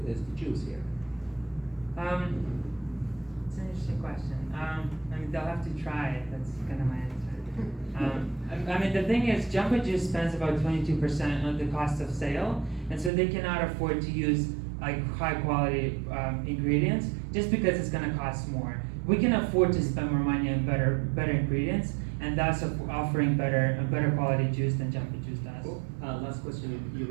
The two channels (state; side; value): drops out; left; at 13.1 s